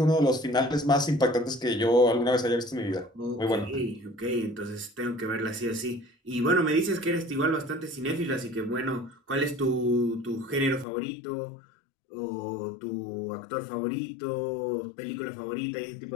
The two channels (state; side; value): drops out; right; at 10.9 s